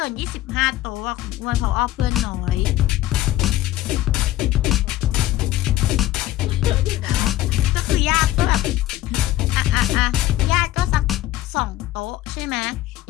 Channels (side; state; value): right; quieter; 15.0 dB